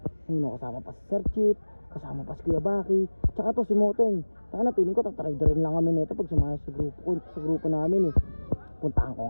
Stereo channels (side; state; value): both; inverted; correlation -1.00